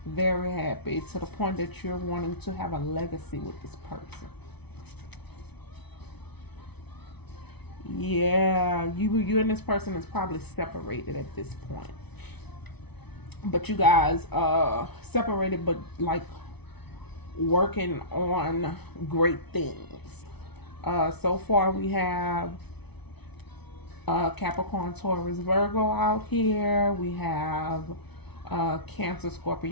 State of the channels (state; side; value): late; right; 0.99 ms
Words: to the point that you're wanting to have a legacy with this person. Yeah, you and this person is probably separated at this point, but you guys separated, but like working on great things. So far we have Capricorn, Taurus, Virgo out here. We have Cancer,